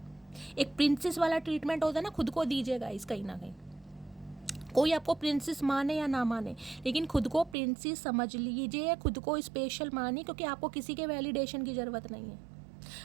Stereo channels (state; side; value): drops out; left; at 7.6 s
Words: एक प्रिंसेस वाला ट्रीटमेंट होता है ना, खुद को दीजिएगा इस कहीं ना कहीं। कोई आपको प्रिंसेस माने या ना माने, लेकिन खुद को प्रिंसेस समझ लीजिए, खुद को स्पेशल मानिए, क्योंकि आपको किसी के वैलिडेशन की ज़रूरत नहीं है।